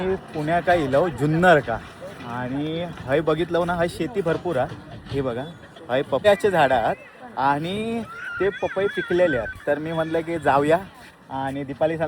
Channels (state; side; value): identical; both; correlation 1.00